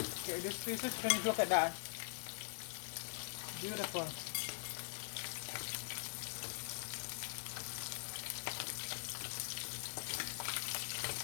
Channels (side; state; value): right; silent; digital silence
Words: okay, this piece is finished. Look at that. Beautiful.